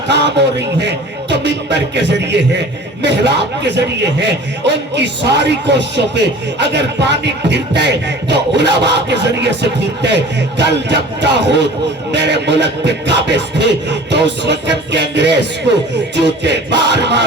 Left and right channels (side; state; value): both; normal; correlation 0.43